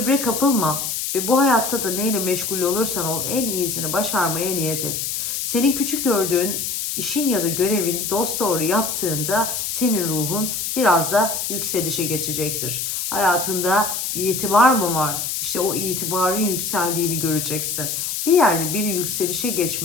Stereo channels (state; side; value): noise; left; hiss, 3 dB below the sound